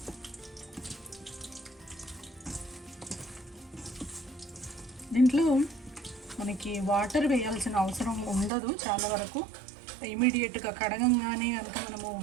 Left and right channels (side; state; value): left; drops out; at 8.5 s